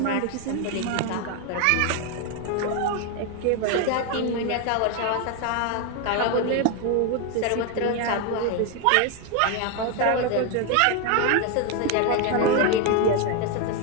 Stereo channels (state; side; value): different; both; correlation 0.01